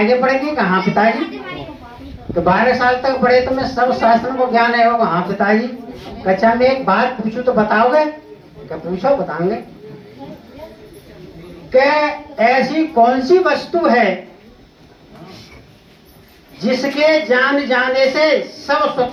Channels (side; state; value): both; identical; correlation 1.00